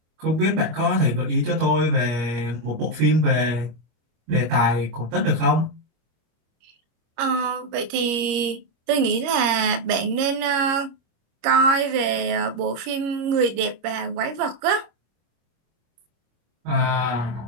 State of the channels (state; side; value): late; left; 25 ms